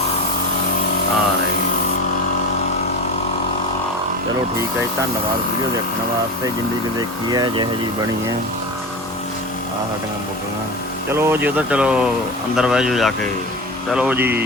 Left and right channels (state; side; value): normal; both; correlation 0.27